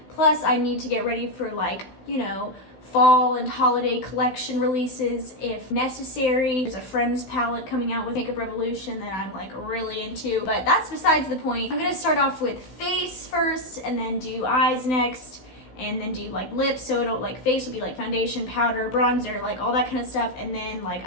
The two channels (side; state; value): right; late; 16 ms